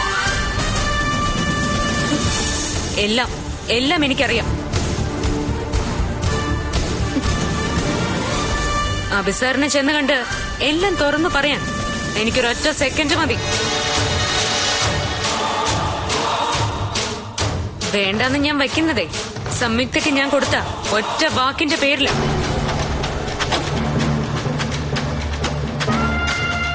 എല്ലാം എനിക്കറിയാം. അഭിസാറിനെ ചെന്ന് കണ്ട് എല്ലാം തുറന്നു പറയാൻ എനിക്കൊരൊറ്റ സെക്കൻഡ് മതി. വേണ്ടെന്ന് ഞാൻ വയ്ക്കുന്നതേ സംയുക്തയ്ക്ക് ഞാൻ കൊടുത്ത ഒറ്റ വാക്കിന്റെ പേരില.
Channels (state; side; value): identical; both; correlation 1.00